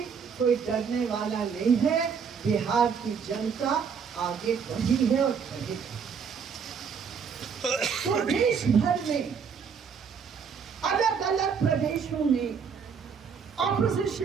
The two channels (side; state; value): left; quieter; 6.4 dB